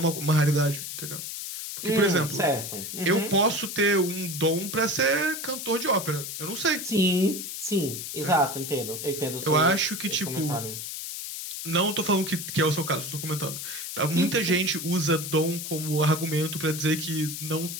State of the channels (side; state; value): left; noise; hiss, 7 dB below the sound